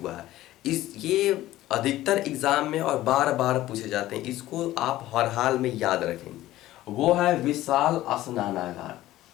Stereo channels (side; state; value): right; quieter; 15.4 dB